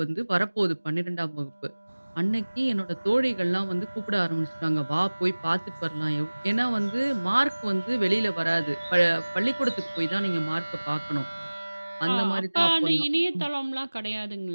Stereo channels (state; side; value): inverted; both; correlation -1.00